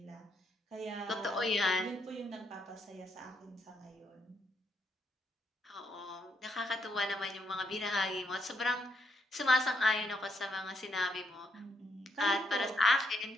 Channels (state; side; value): normal; both; correlation 0.76